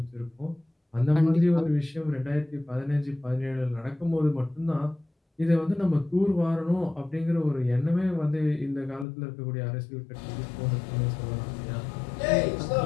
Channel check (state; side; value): drops out; right; at 9.1 s